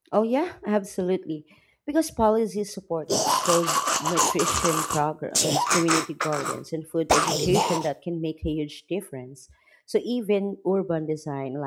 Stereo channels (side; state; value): both; identical; correlation 1.00